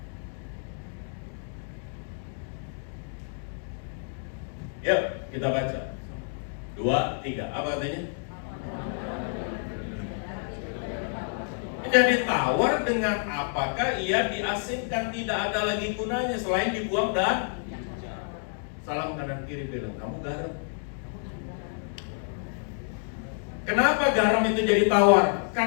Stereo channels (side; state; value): right; silent; digital silence